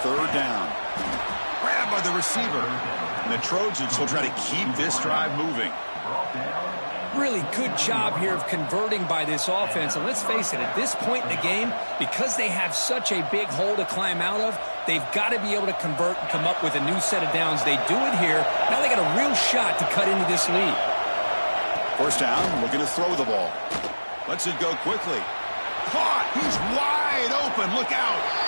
3rd down. Grabbed by the receiver. And the Trojans will try to keep this drive moving. Really good job here of converting by this offense. And let's face it, at this point in the game, because they have such a big hole to climb out of, they've got to be able to convert and come up with a new set of downs. They do it here. Now they got a real shot to cut into this lead. 1st down, looking to throw the ball. Lets it go quickly. Caught. He's wide open. Look out.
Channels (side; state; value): both; inverted; correlation -1.00